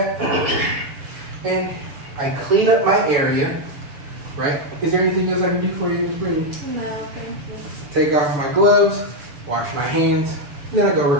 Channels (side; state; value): left; late; 6.9 ms